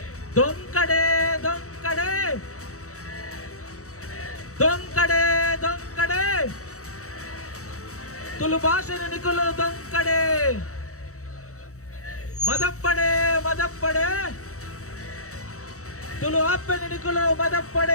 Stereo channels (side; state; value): right; late; 0.65 ms